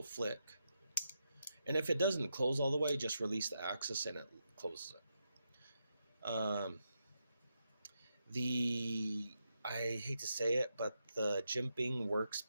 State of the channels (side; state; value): both; inverted; correlation -0.84